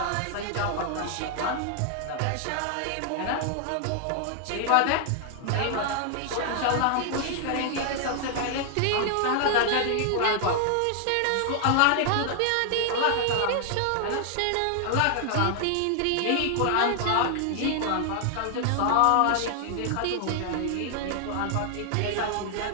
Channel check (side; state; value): both; different; correlation 0.00